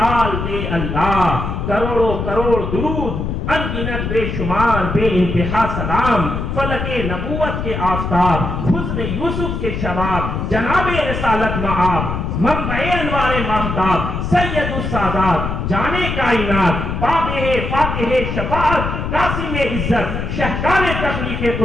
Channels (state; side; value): noise; left; rumble, 3 dB below the sound